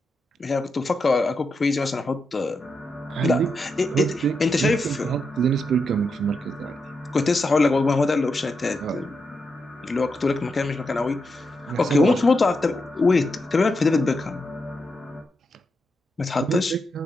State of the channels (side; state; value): both; normal; correlation 0.85